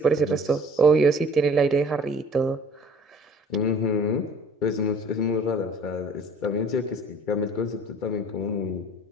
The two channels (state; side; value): normal; both; correlation 0.50